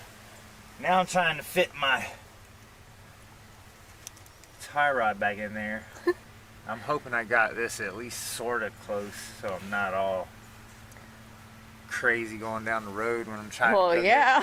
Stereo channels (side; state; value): both; identical; correlation 1.00